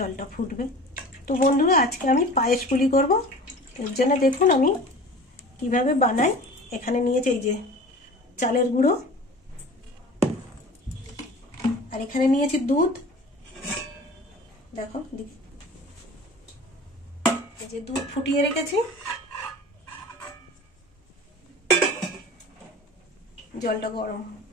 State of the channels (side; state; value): both; normal; correlation 0.40